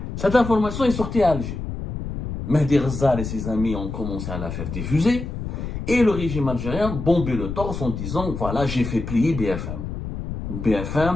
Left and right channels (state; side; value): noise; left; rumble, 6 dB below the sound